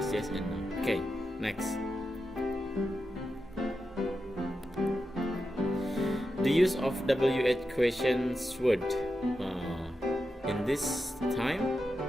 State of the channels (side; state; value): both; normal; correlation 0.89